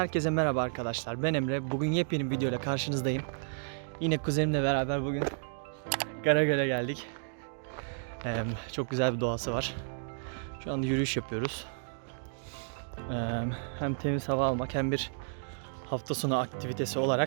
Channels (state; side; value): silent; left; digital silence